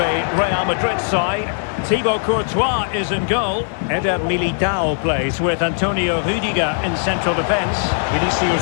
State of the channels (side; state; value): right; silent; digital silence